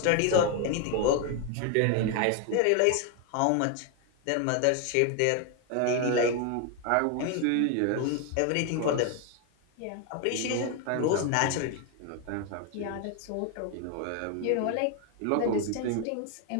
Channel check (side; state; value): both; different; correlation 0.01